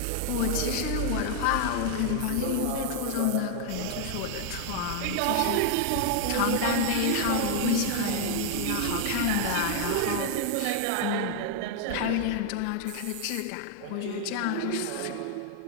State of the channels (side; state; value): both; different; correlation 0.00